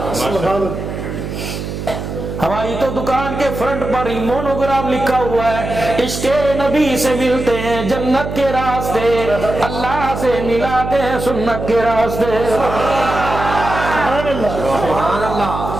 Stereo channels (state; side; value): noise; right; hum, 6 dB below the sound